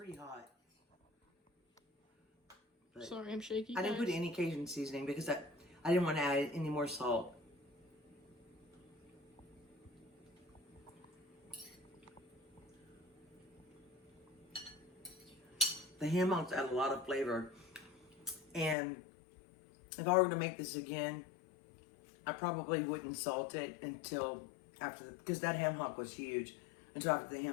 hot. But sorry, I'm shaky. I didn't put any Cajun seasoning because I didn't want to add any more salt. The ham hocks add a lot of flavor. And if I were to make this again, I probably wouldn't salt it until after, because that ham hock was huge, until after the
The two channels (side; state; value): right; drops out; at 18.8 s